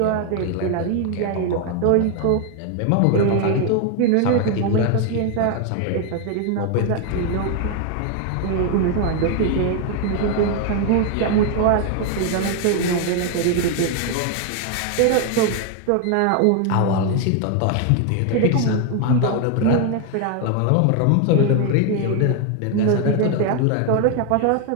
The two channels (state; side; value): different; both; correlation 0.01